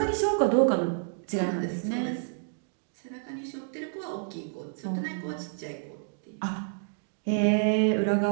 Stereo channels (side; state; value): left; silent; digital silence